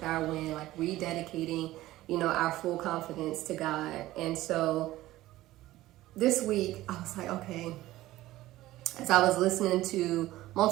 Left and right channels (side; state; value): left; quieter; 16.3 dB